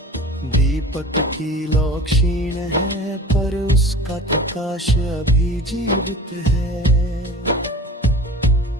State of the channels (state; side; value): normal; both; correlation 0.38